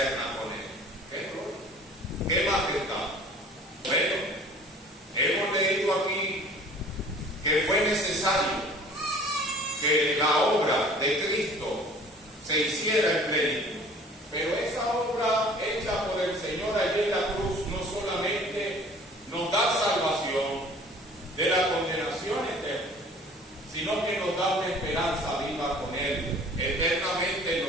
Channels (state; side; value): normal; both; correlation 0.49